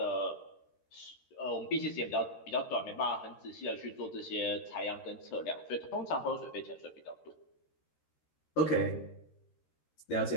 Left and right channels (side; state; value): right; late; 13 ms